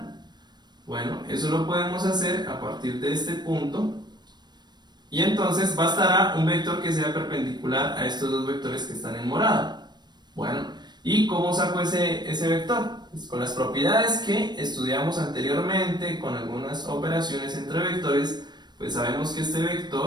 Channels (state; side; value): late; left; 0.21 ms